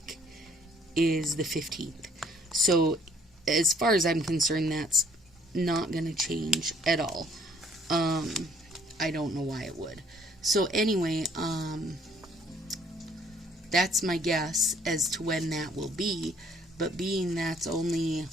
is the 15th. So as far as I'm concerned, that's not going to change at all. I don't know why it would. So anyway, that's my guess as to when that will be. But being that's only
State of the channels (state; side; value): normal; both; correlation 0.61